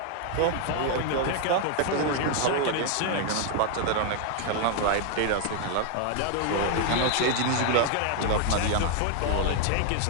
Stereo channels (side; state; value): both; different; correlation 0.00